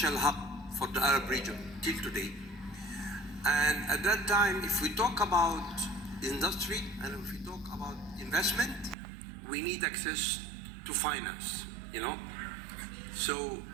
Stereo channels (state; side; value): drops out; left; at 9.0 s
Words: hub for the Arab region till today. And at that time, if we talk about industry and if we talk about investment, we need access to finance, So